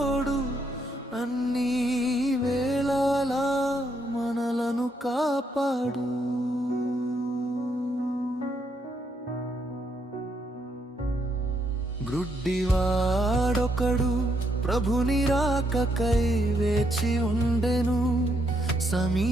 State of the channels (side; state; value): both; normal; correlation 0.75